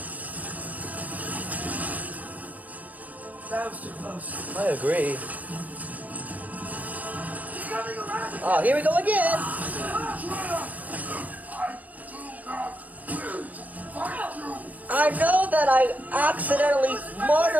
That was too close. I agree. He's coming around! Oh, here we go again! I know that I accidentally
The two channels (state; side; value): late; left; 0.075 ms